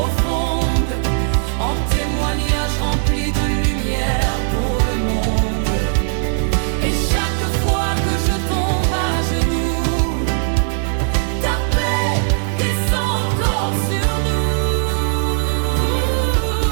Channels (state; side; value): silent; left; digital silence